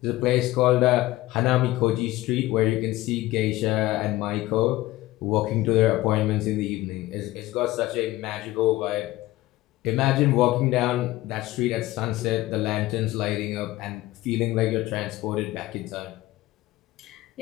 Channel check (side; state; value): right; quieter; 17.3 dB